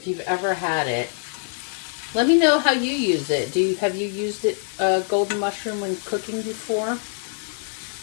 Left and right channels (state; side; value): silent; right; 63 dB below the other